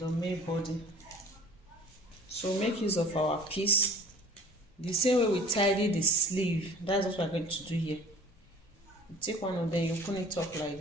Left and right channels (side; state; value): both; normal; correlation 0.47